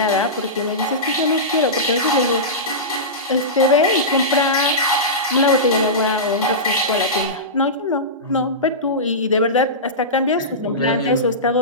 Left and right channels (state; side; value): normal; both; correlation -0.17